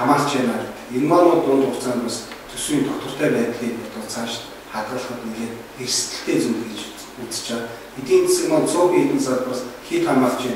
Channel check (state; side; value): identical; both; correlation 1.00